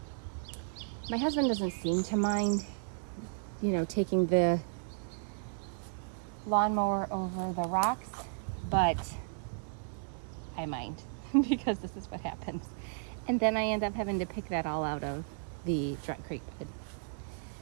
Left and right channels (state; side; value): silent; left; digital silence